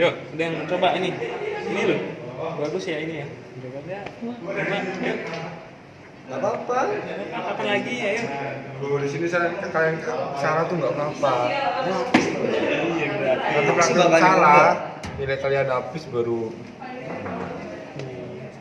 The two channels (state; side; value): identical; both; correlation 1.00